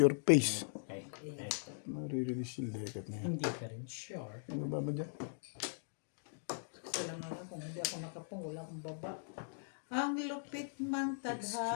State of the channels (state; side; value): silent; right; digital silence